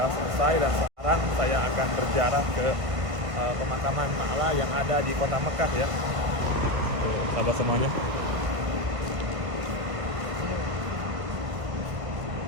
selesai. Dan sekarang saya akan berziarah ke pemakaman Ma'la yang ada di kota Mekah ya. Tuh sahabat semuanya.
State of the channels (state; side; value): late; left; 1.5 ms